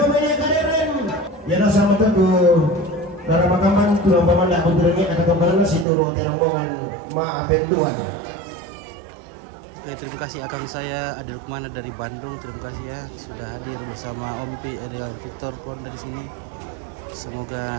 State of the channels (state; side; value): drops out; left; at 5.9 s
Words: Kaderen. Ya sama tuh, Dara Makaman, tulang pemandak kunturnya kata kembali situ rombongan maafin Tuhan. Oke, terima kasih akang saya Adil Kumana dari Bandung. Terima kasih ya sudah hadir bersama Om Pi Ariel Victor Kon dari sini. Semoga